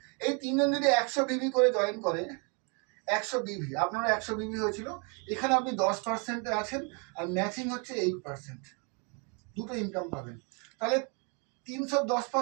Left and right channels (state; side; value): quieter; left; 35.1 dB